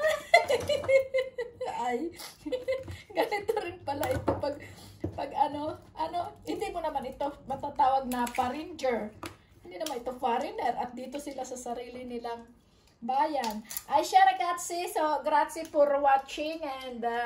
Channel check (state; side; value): identical; both; correlation 1.00